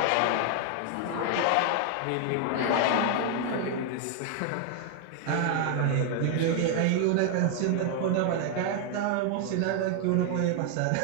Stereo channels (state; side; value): different; both; correlation 0.00